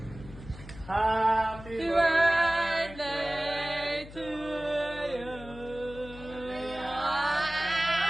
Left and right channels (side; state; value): left; noise; hum, 16 dB below the sound